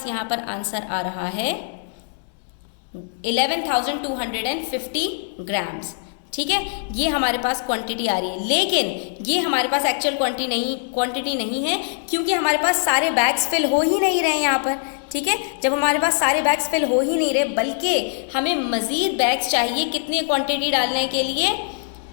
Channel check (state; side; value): silent; right; digital silence